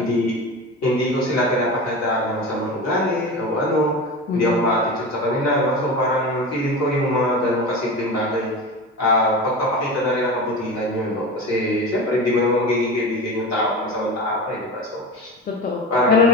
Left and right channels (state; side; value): normal; both; correlation 0.28